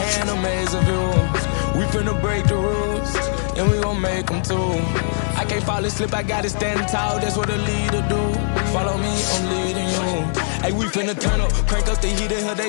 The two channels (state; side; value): silent; right; digital silence